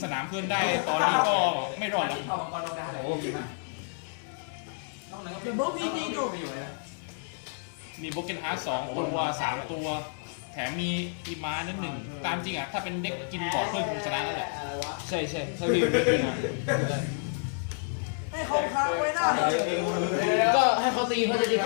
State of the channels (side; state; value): right; silent; digital silence